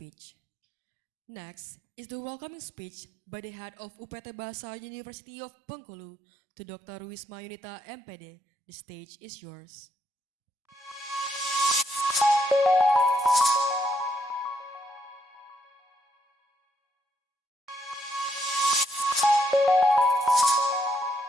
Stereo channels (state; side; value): normal; both; correlation 0.76